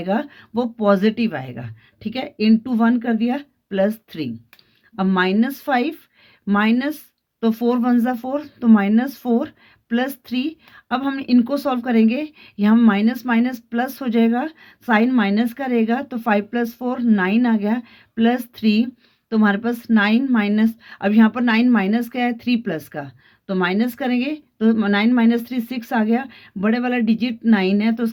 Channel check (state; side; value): identical; both; correlation 1.00